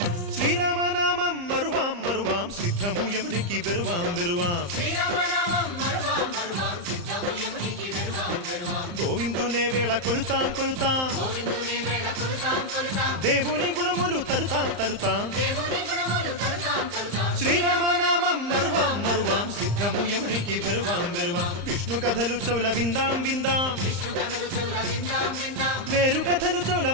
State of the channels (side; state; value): left; late; 35 ms